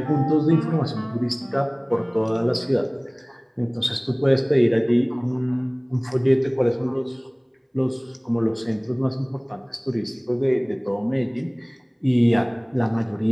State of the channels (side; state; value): both; identical; correlation 1.00